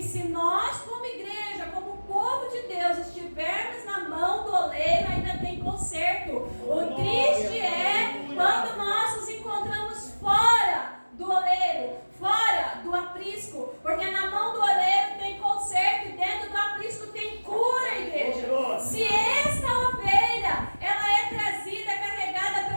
se nós, como igreja, como povo de Deus, estivermos na mão do oleiro, ainda tem conserto. O triste é quando nós nos encontramos fora do oleiro, fora do aprisco, porque na mão do oleiro tem conserto e dentro do aprisco tem cura, igreja. Se esta ovelha, ela é trazida, carregada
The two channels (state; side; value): inverted; both; correlation -1.00